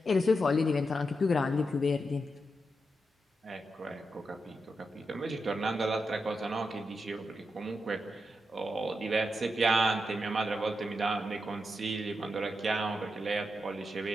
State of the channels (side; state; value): both; normal; correlation 0.86